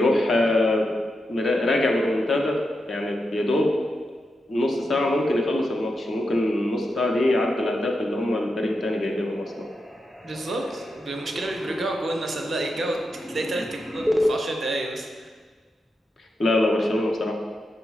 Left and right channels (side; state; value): both; normal; correlation 0.87